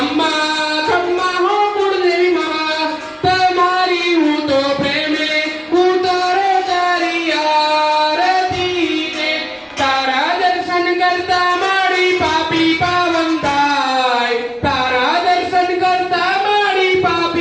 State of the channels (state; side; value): identical; both; correlation 1.00